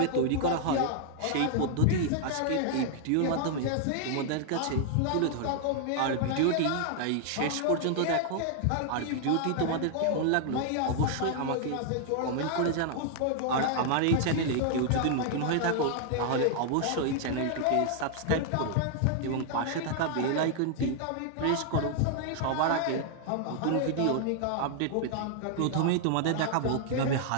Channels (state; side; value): different; both; correlation 0.00